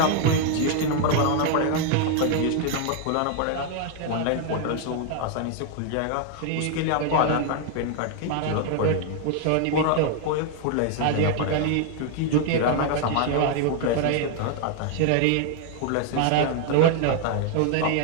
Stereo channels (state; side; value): different; both; correlation 0.00